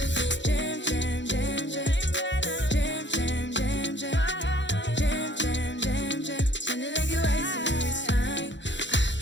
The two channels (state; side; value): late; right; 0.53 ms